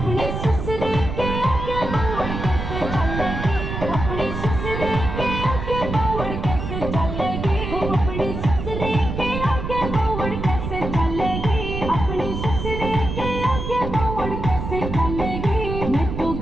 ससुरे के आगे बावड़ कैसे चलेगी, अपने ससुरे के आगे बावड़ कैसे चलेगी, अपने ससुरे के आगे बावड़ कैसे चलेगी, अपने ससुरे के आगे बावड़ कैसे चलेगी, मैं तो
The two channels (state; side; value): noise; right; rumble, 5 dB below the sound